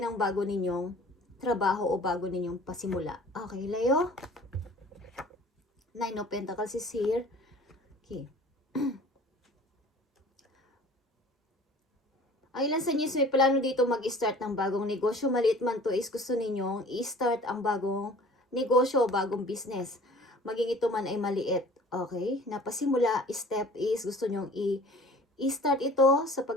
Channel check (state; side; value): normal; both; correlation 0.47